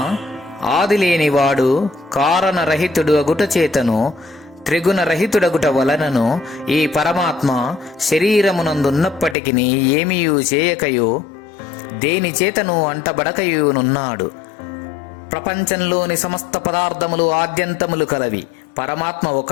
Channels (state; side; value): drops out; right; at 9.3 s